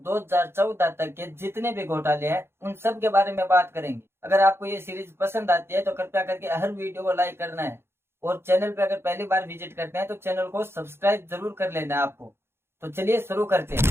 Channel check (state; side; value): late; left; 0.12 ms